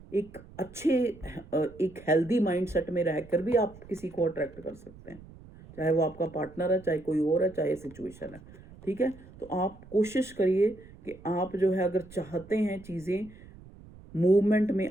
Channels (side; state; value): right; noise; rumble, 20 dB below the sound